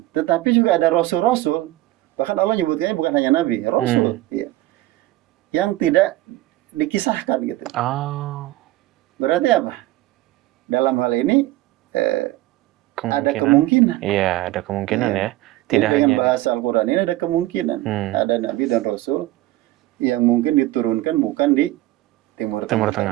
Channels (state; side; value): quieter; left; 16.9 dB